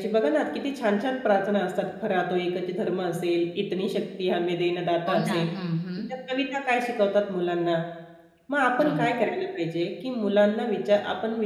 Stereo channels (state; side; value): identical; both; correlation 1.00